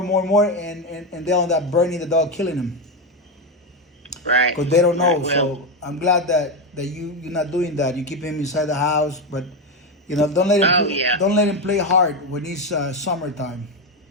they'll end up burning the dog, killing him. Right. Because they don't know. Right, well, So I'm glad that you're not doing that. You keep him inside the house, but don't let him don't let him play hard when it's summertime.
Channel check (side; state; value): both; normal; correlation 0.10